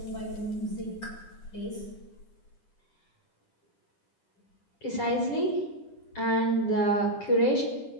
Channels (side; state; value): right; late; 10 ms